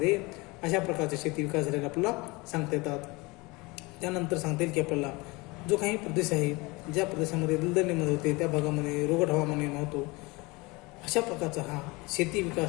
अशा प्रकारचे शेती विकास झालेला आपल्याला सांगता येतात. त्यानंतर सांगता येईल की आपल्याला जो काही प्रदेश आहे ज्या प्रदेशामध्ये दलदल निर्माण होते त्या भागामध्ये रोगट हवामान निर्माण होतो अशा प्रकारचा हा शेती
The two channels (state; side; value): quieter; right; 24.8 dB